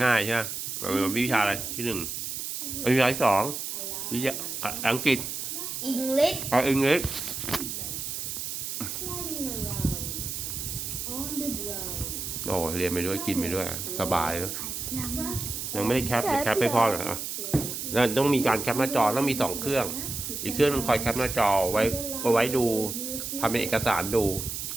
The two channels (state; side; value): noise; right; hiss, 5 dB below the sound